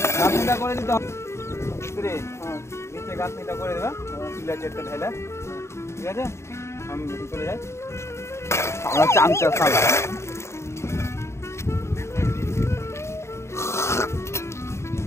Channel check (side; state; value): right; late; 0.13 ms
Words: গাঁথনিটা করে দিতে হবে মিস্ত্রি। নিচে গাঁথনিটা করে দেবে পিলার চেটটা ঢেলে, ঠিক আছে? আমি চলে যাই, আমরা চামচা সালা।